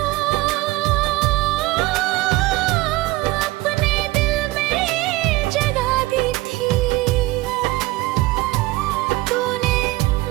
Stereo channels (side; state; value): left; quieter; 19.4 dB